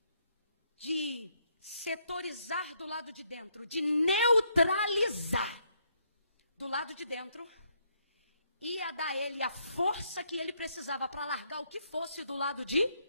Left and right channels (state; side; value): inverted; both; correlation -0.73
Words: de setorizar do lado de dentro, de neutralizar do lado de dentro, ia dar a ele a força que ele precisava para largar o que fosse do lado de